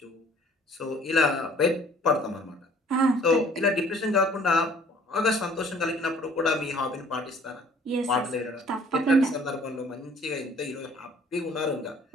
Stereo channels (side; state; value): both; normal; correlation 0.55